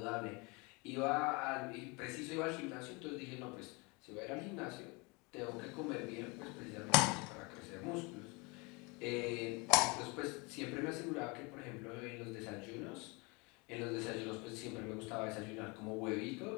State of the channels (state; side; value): quieter; right; 28.3 dB